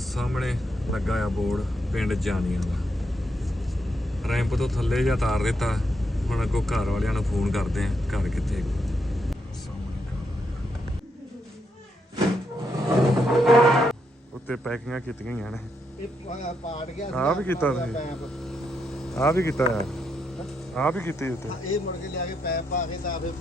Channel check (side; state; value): both; normal; correlation 0.80